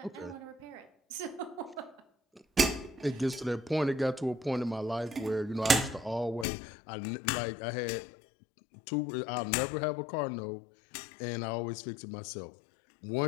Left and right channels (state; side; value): drops out; right; at 6.5 s